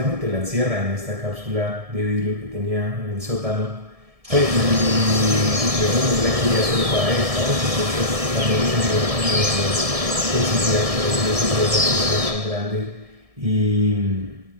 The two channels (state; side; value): late; left; 1.7 ms